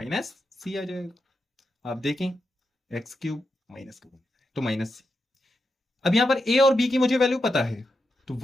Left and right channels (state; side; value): normal; both; correlation 0.86